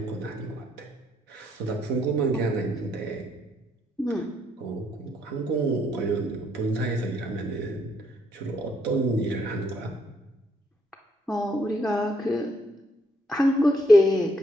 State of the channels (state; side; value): normal; both; correlation 0.71